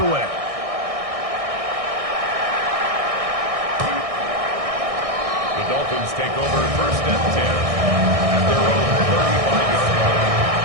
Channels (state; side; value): late; left; 1.6 ms